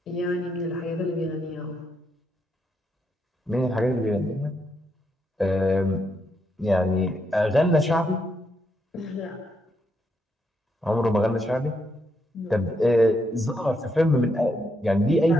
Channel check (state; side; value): normal; both; correlation 0.79